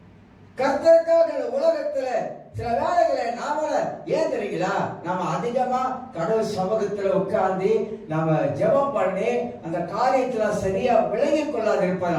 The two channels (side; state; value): both; identical; correlation 1.00